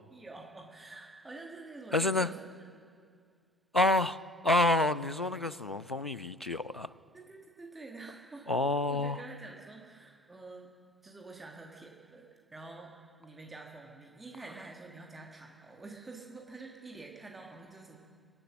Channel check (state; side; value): normal; both; correlation 0.45